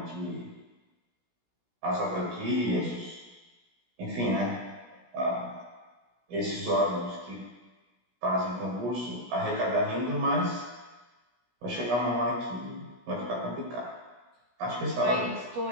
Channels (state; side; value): late; left; 17 ms